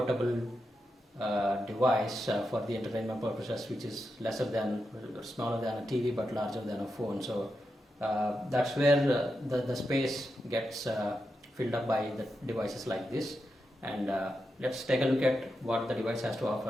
device for the entertainment purposes, which is smaller than a TV but larger than a phone. So that's where the space gets filled up by the devices like this. And let's take a look at what the device has to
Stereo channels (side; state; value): both; normal; correlation 0.87